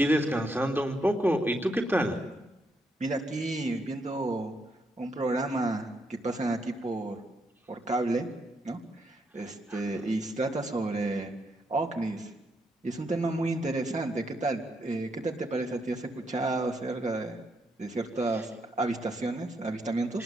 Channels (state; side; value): normal; both; correlation 0.78